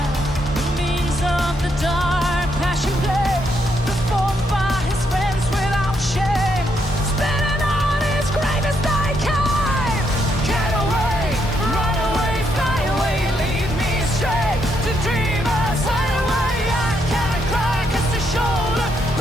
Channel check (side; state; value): both; normal; correlation 0.77